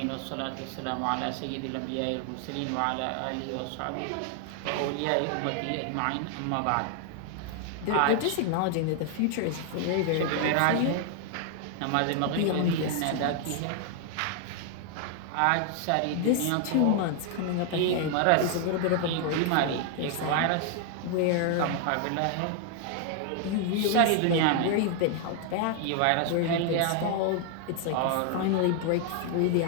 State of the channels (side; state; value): both; different; correlation 0.00